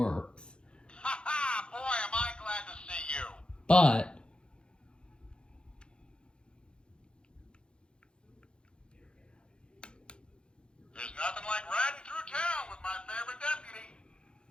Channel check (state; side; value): late; right; 0.053 ms